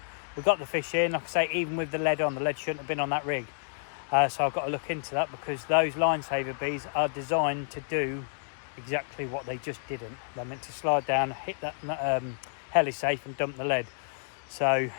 We got the fish in, like I say, even with the lead on. The lead shouldn't have been on that rig. So I've got to look into that, because those line saver bees are designed to do exactly what they just didn't. They're meant to slide down, hit that heli safe and dump the lead. So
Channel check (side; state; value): right; silent; digital silence